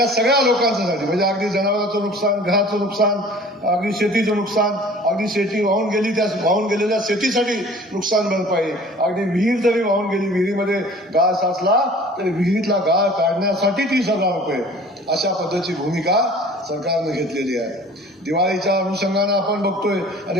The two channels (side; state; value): both; normal; correlation 0.47